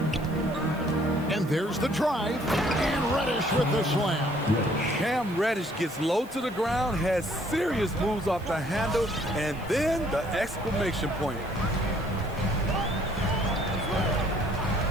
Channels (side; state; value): right; noise; hiss, 24 dB below the sound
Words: And there's the drive. And Reddish with the slam. Cam Reddish gets low to the ground, has serious moves off the handle, and then the exclamation point.